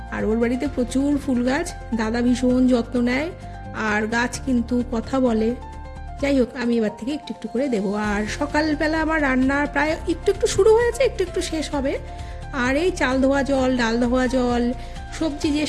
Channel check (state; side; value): identical; both; correlation 1.00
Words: আর ওর বাড়িতে প্রচুর ফুল গাছ, দাদা ভীষণ যত্ন নেয় আর গাছ কিন্তু কথা বলে। যাই হোক, আমি এবার থেকে একটু একটু করে দেবো। আর সকালবেলা আমার রান্না প্রায় একটু শুরু হয়েছে, একটু শেষ হবে। আর এই চাল ধোয়া জল, ডাল ধোয়া জল, সবজি যে